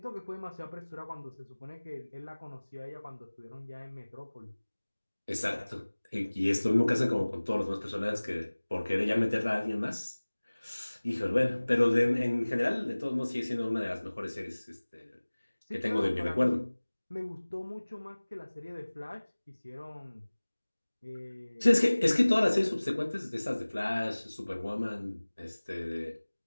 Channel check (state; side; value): inverted; both; correlation -1.00